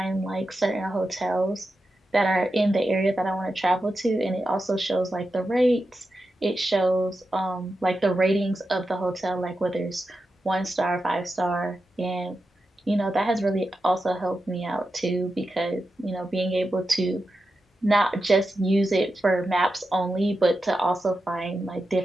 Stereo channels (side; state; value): both; normal; correlation 0.90